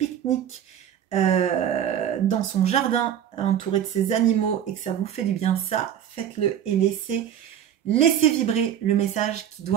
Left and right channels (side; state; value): left; quieter; 9.9 dB